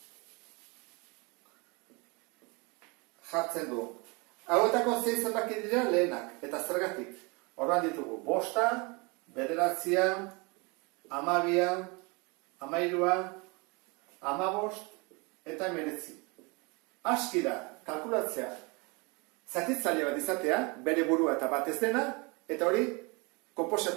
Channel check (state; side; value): quieter; left; 28.8 dB